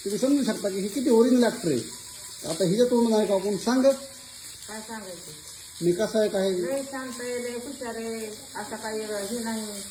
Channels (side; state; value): both; identical; correlation 1.00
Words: समजू शकता की ही किती ओरिजिनल ॲक्टर आहे. आता हिच्या तोंड आहे का आपण सांग काय सांगायचं, मी कसं आहे काय. लय शांत आहे, लय हुशार आहे, असं काही हे नाही.